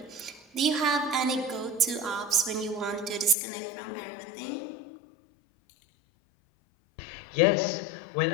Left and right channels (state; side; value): drops out; right; at 3.4 s